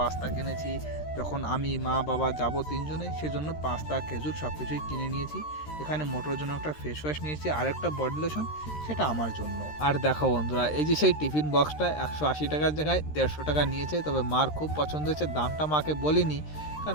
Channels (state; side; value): late; right; 13 ms